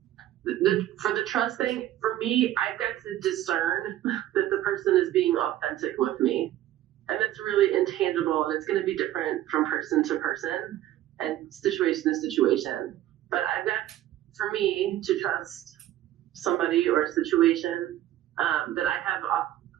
For the trust thing, for me, I've got to discern that the person is being authentic with me. And it's really intangible, and it's going to be different from person to person and situation to situation. But I've got, for me, to trust somebody or a situation, that I have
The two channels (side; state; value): left; quieter; 13.5 dB